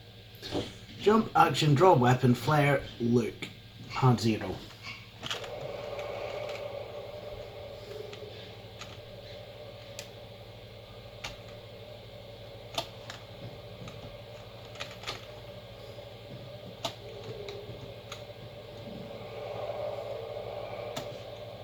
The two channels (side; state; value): both; identical; correlation 1.00